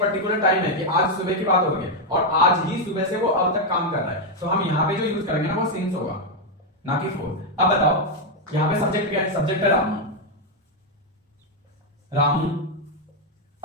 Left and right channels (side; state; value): both; normal; correlation 0.02